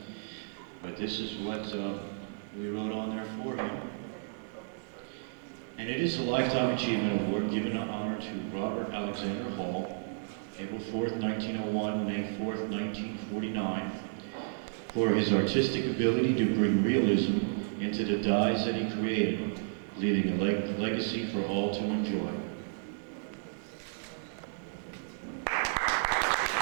But this is what we wrote on there for him. And it is a Lifetime Achievement Award given in honor to Robert Alexander Hall, April 4th, 1901, May 4th, 1949, for his artistic ability to bring realism into the dyes that he created, leaving a legacy for all to enjoy.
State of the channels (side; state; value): left; silent; digital silence